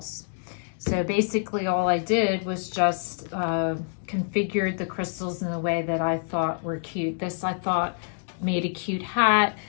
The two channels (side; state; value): right; silent; 61 dB below the other